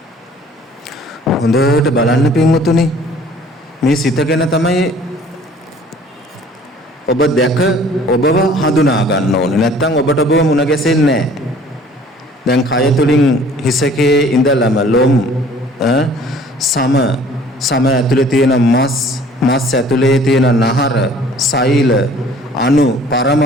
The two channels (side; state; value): both; normal; correlation 0.52